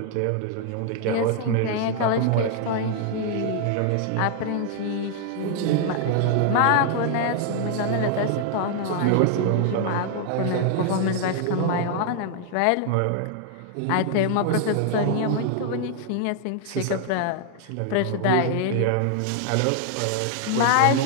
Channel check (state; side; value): different; both; correlation 0.00